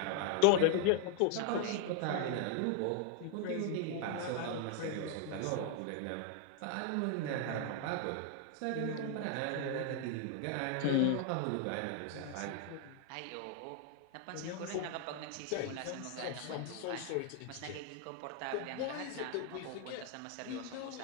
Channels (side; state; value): both; different; correlation 0.00